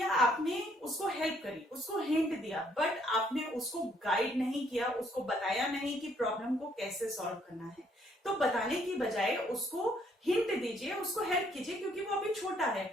आपने उसको हेल्प करी, उसको हिंट दिया, बट आपने उसको गाइड नहीं किया, उसको बताया नहीं कि प्रॉब्लम को कैसे सॉल्व करना है। तो बताने की बजाय उसको हिंट दीजिए, उसको हेल्प कीजिए, क्योंकि वो अभी छोटा है।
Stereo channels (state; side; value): normal; both; correlation 0.67